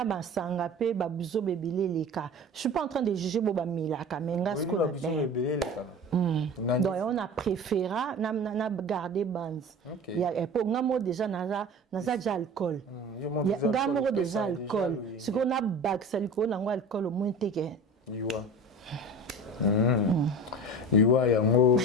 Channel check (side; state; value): both; normal; correlation 0.35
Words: ba sanga pe ba buzo bebele leka. Je suis pas en train de juger boba milaka mais ngasko na donc on a préféré na garder bands. Il y a pour ngamo déjà na za alcool. Ngamo déjà alcool. Ce qu'on a bac ça ko na alcool au moins teke. Iwa yango